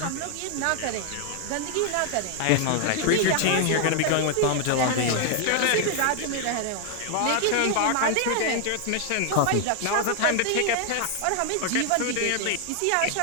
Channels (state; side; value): different; both; correlation 0.00